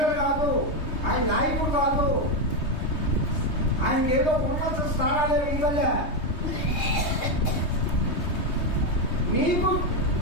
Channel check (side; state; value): right; late; 3.2 ms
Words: కాదు, ఆయన నాయకుడు కాదు, ఆయనకి ఏదో ఉన్నత స్థానాలే ఇవ్వలే. నీకు